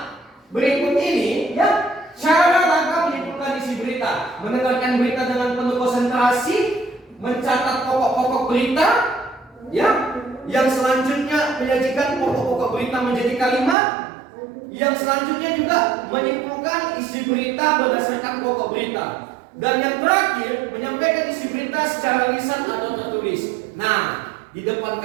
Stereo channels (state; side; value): drops out; left; at 13.8 s